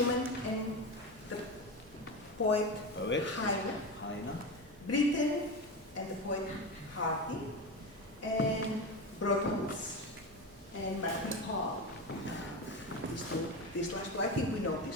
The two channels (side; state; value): both; normal; correlation 0.21